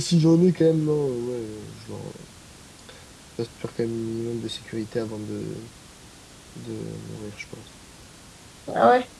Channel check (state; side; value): identical; both; correlation 1.00